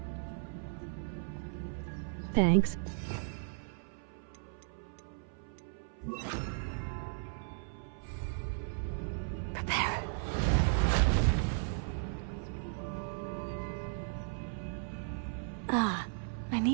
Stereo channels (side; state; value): left; silent; 54 dB below the other